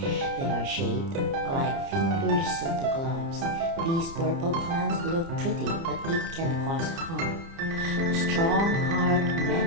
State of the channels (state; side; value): late; left; 30 ms